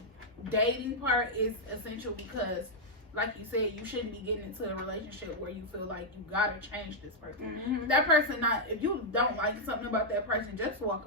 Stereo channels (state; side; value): normal; both; correlation -0.03